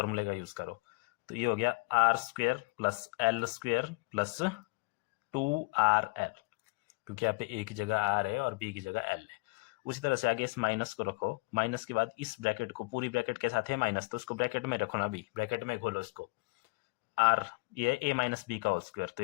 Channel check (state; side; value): quieter; right; 27.9 dB